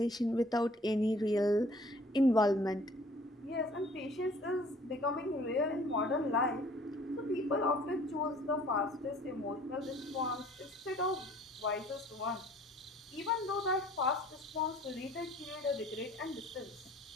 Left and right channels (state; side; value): normal; both; correlation 0.54